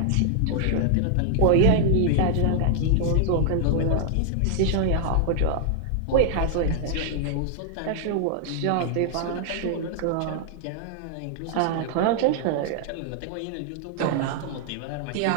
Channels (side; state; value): both; different; correlation -0.01